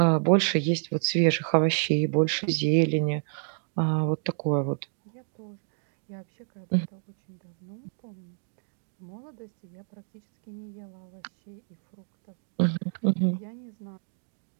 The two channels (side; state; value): left; silent; 59 dB below the other